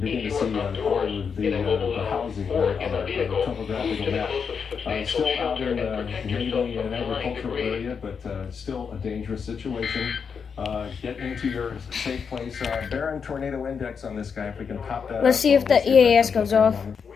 to see all of the housing there on the topographical map. Still out in mainly an agricultural area, but still a dangerous situation. Get into your safe place. Barron tornado index on this guy, if we can pop that. Let's see if the EAS goes off. At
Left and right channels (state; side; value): quieter; right; 6.2 dB